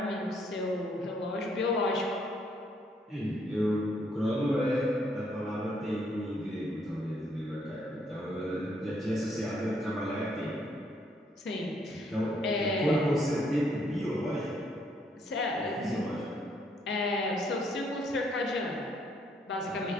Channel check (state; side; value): normal; both; correlation 0.70